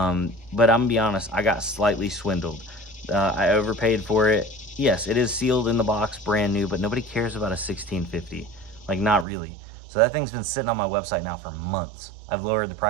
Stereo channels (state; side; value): drops out; left; at 9.2 s